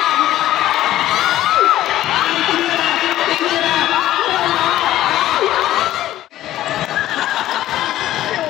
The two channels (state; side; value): quieter; right; 13.9 dB